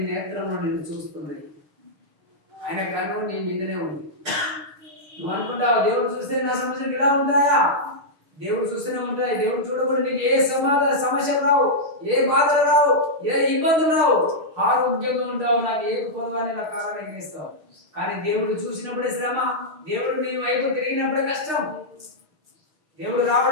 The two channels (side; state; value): left; late; 6.6 ms